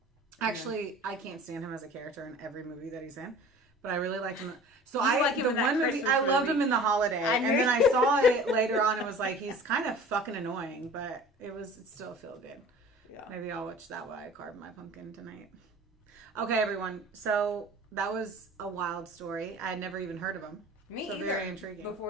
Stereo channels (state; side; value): normal; both; correlation 0.43